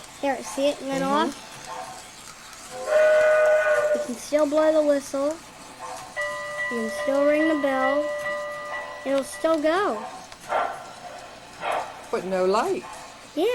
There, see it went off? You can still blow the whistle. You can still ring the bell. It'll still go. But no light.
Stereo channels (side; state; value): both; identical; correlation 1.00